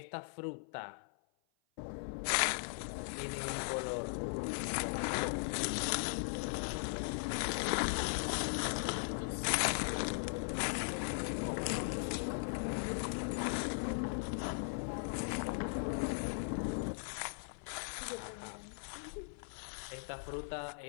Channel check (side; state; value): right; silent; 52 dB below the other